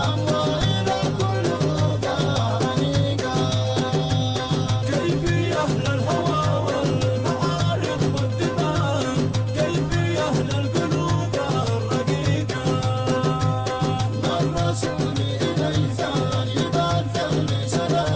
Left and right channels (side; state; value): both; identical; correlation 1.00